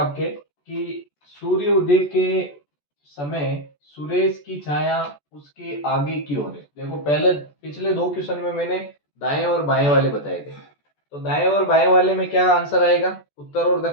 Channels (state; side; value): late; right; 14 ms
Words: कि सूर्य उदय के समय सुरेश की छाया उसके आगे की ओर है। देखो, पहले पिछले दो क्वेश्चन में मैंने दाएं और बाएं वाले बताए थे, तो दाएं और बाएं वाले में क्या आंसर आएगा, उत्तर और